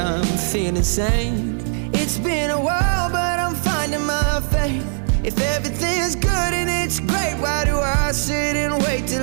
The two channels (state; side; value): silent; left; digital silence